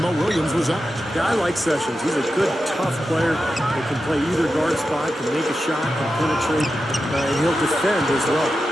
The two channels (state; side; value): normal; both; correlation 0.90